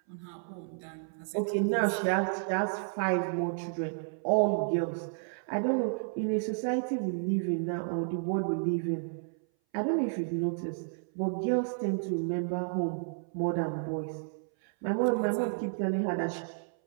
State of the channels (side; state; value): left; silent; 57 dB below the other